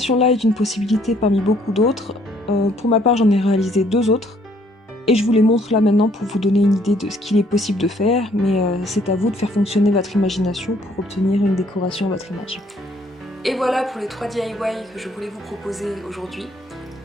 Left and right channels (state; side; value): normal; both; correlation 0.64